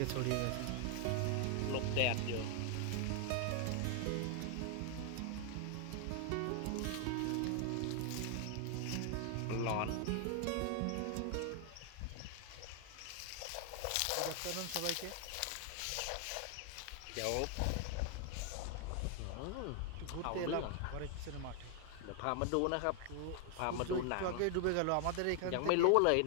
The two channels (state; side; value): different; both; correlation 0.00